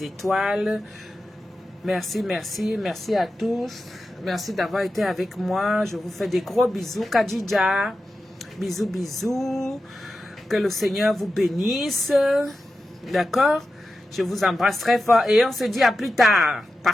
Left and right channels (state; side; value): normal; both; correlation 0.92